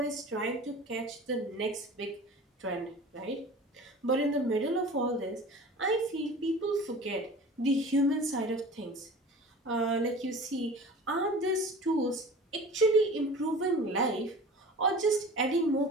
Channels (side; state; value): both; normal; correlation 0.40